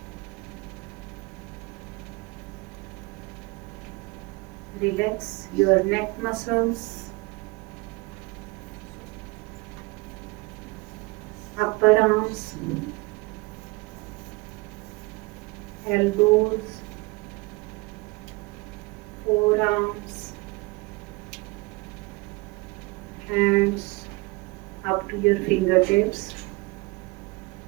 Relax your neck muscles, upper arms, elbows, forearms, hands up to your fingertips.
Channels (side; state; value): left; quieter; 25.0 dB